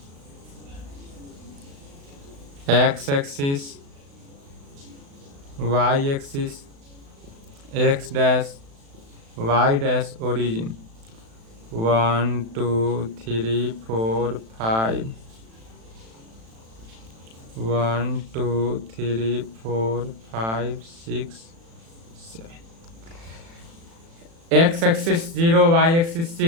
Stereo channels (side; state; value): left; late; 36 ms